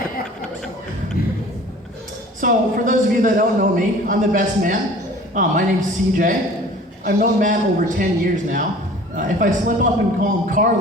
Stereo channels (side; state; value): both; normal; correlation 0.46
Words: So, for those of you that don't know me, I'm the best man. My name's CJ. I've known Matt over 10 years now. If I slip up and call him